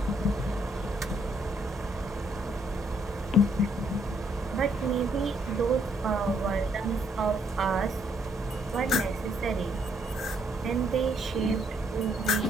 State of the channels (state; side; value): normal; both; correlation 0.70